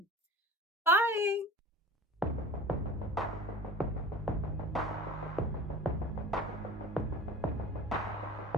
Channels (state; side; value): normal; both; correlation 0.40